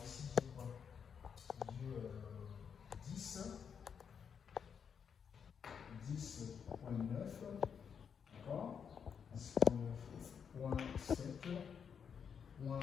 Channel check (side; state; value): right; quieter; 7.1 dB